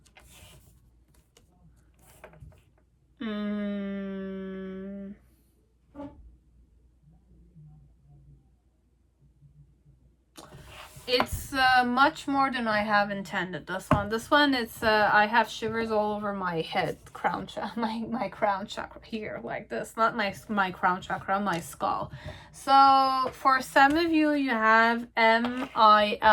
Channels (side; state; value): both; identical; correlation 1.00